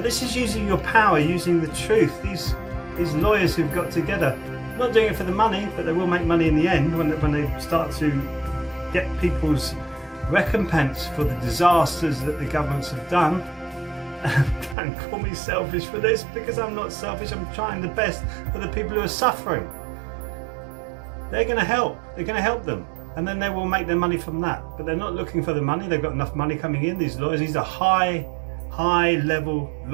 this is using your power, using the truth. These lawyers who've got together, not doing it for the money, but they will make money in the end when they start to get people's recompense for the disasters that the governments have done. Don't call me selfish for this, because I'm not selfish. I'm trying the best for the people who are suffering. They're going to help. They're going to help them, and then they will make their money from that. But they're not looking for the money. They've got enough money coming in. These lawyers, these are high level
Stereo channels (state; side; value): drops out; left; at 14.8 s